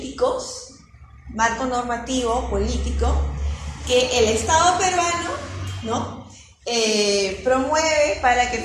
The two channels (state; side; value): identical; both; correlation 1.00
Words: marco normativo político, que el Estado peruano, ¿no? Promueve para que